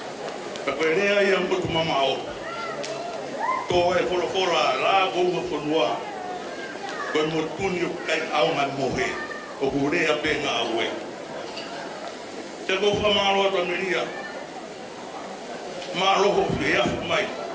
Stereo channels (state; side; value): identical; both; correlation 1.00